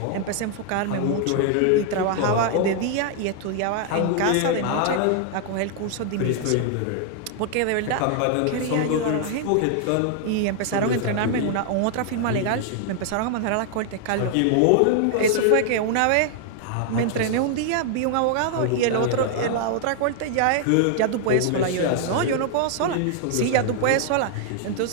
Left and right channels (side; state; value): both; different; correlation 0.00